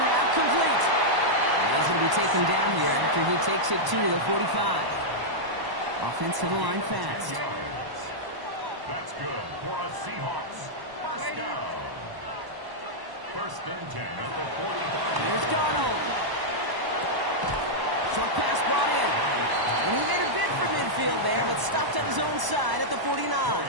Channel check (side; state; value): left; late; 1.0 ms